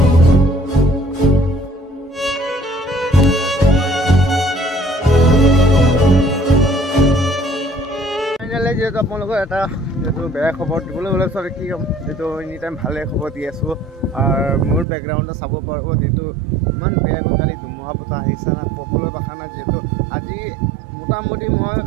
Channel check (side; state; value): left; drops out; at 14.9 s